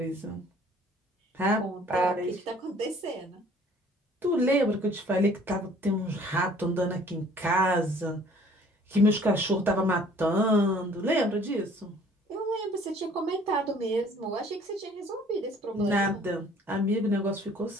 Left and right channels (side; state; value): both; normal; correlation 0.54